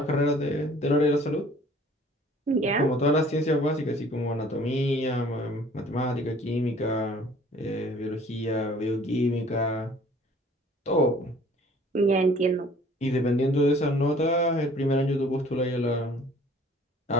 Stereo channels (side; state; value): both; normal; correlation 0.53